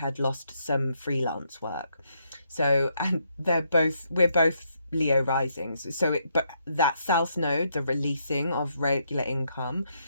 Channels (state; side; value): inverted; both; correlation -0.76